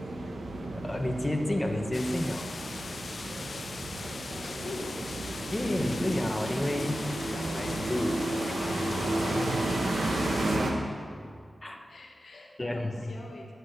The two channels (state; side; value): normal; both; correlation 0.93